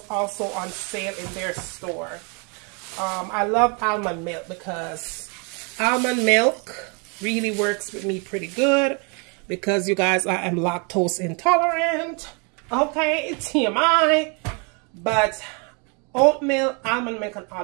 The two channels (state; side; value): quieter; left; 34.6 dB